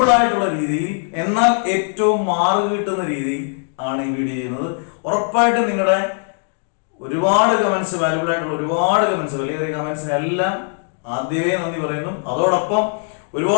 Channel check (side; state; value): right; silent; 57 dB below the other